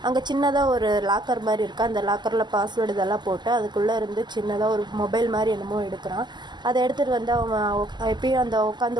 அங்கே சின்னதாக ஒரு லாக்கர் மாதிரி இருக்குது. அந்த லாக்கரில் பாஸ்வேர்டு இதெல்லாம் போட்டு அதுக்குள்ளே இருந்து சின்னதாக ஒரு மொபைல் மாதிரி என்னமோ எடுக்கிறான். அதை எடுத்துகிட்டு வந்து அவன் எப்பயும் அந்த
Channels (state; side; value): late; left; 0.21 ms